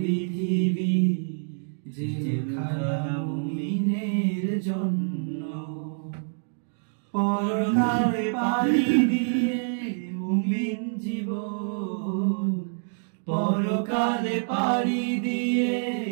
জেলখানা মুমিনের জন্য। পরকালে পাড়ি দিয়ে মুমিন জীবন, পরকালে পাড়ি দিয়ে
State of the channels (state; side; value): silent; left; digital silence